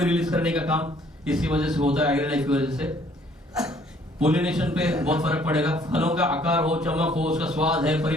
रिलीज करने का काम इसकी वजह से होता है, एग्री लाइफ की वजह से। पोलिनेशन पे बहुत फर्क पड़ेगा, फलों का आकार हो, चमक हो, उसका स्वाद है,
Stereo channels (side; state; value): both; normal; correlation 0.61